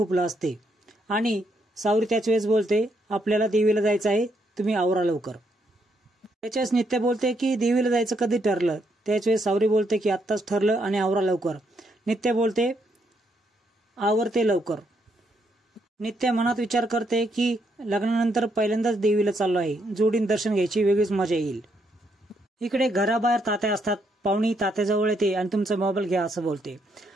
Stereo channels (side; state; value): both; normal; correlation 0.76